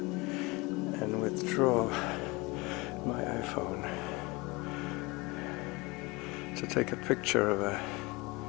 and withdraw my iPhone to take a picture of a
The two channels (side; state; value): right; quieter; 24.7 dB